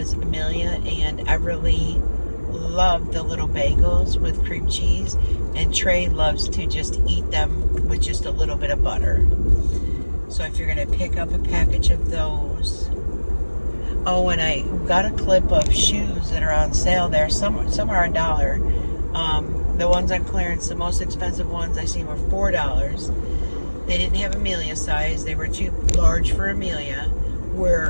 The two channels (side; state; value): both; inverted; correlation -1.00